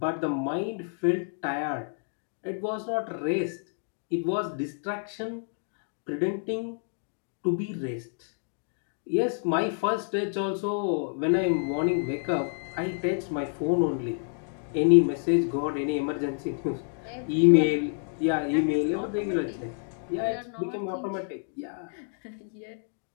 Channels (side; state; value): right; silent; 59 dB below the other